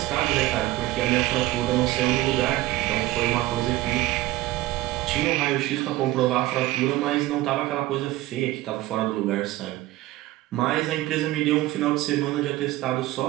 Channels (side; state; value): left; quieter; 16.9 dB